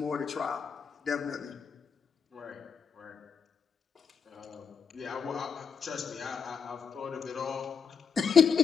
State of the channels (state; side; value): quieter; right; 6.4 dB